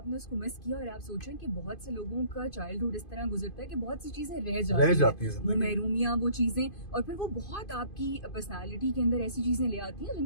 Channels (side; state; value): right; late; 2.5 ms